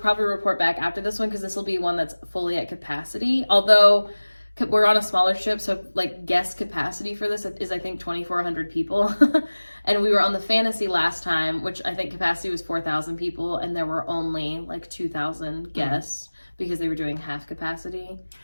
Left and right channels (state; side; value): inverted; both; correlation -1.00